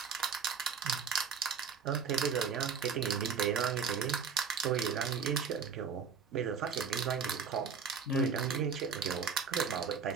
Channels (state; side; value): quieter; left; 6.2 dB